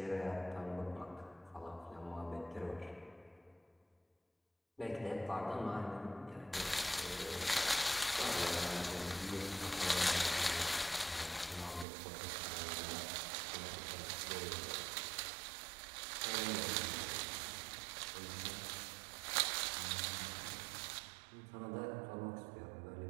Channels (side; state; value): left; drops out; at 11.9 s